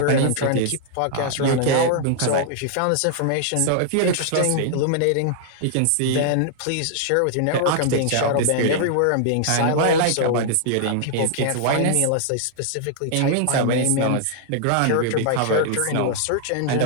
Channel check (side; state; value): both; different; correlation -0.01